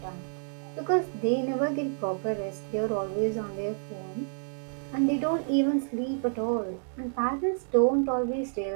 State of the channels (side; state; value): left; silent; digital silence